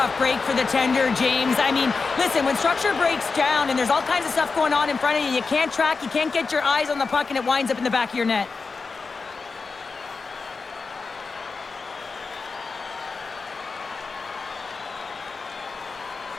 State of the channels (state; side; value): quieter; right; 4.5 dB